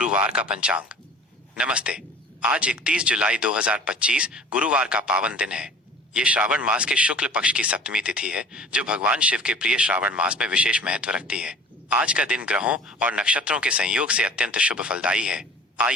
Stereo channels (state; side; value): normal; both; correlation 0.44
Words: का पंचांग। नमस्ते। आज 31 जुलाई 2025 गुरुवार का पावन दिन है। ये श्रावण मास के शुक्ल पक्ष की सप्तमी तिथि है, जो भगवान शिव के प्रिय श्रावण मास में विशेष महत्व रखती है। आज का दिन ग्रहों और नक्षत्रों के संयोग से अत्यंत शुभ फलदायी है।